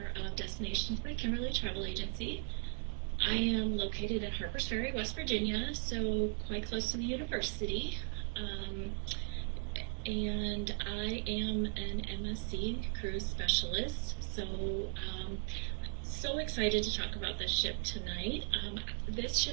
of Destinations by Kimberly Travel Agency. I am located in Harpers Ferry, West Virginia, so quite close to the university. And I am an MSC Cruise Specialist, so excited to talk about this ship tonight. This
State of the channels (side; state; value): left; silent; 53 dB below the other